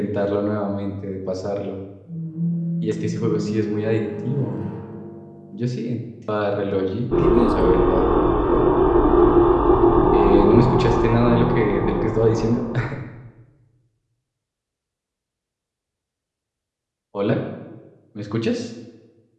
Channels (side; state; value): both; identical; correlation 1.00